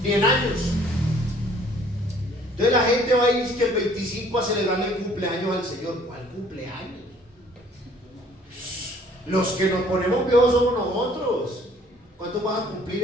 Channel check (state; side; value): normal; both; correlation 0.57